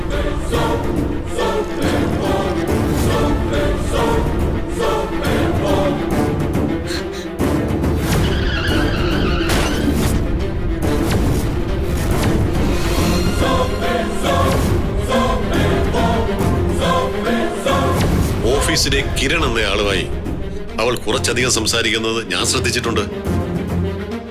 ഓഫീസിലെ കിരൺ എന്ന ആളുമായി അവൾ കുറച്ചധികം സംസാരിക്കുന്നത് ഞാൻ ശ്രദ്ധിച്ചിട്ടുണ്ട്.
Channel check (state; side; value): identical; both; correlation 1.00